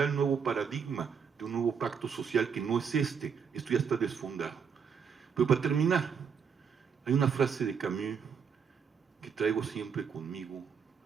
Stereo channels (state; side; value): quieter; left; 6.6 dB